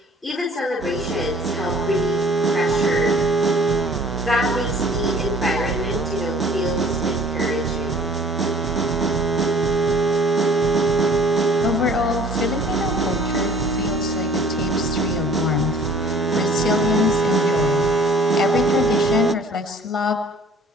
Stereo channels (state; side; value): normal; both; correlation 0.51